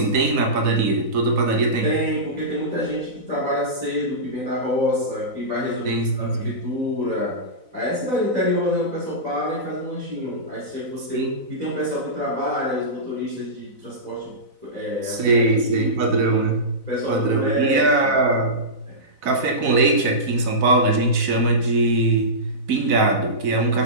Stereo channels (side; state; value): left; late; 4.0 ms